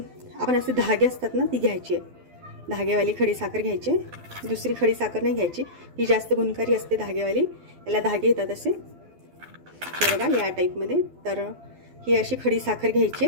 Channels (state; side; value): late; left; 12 ms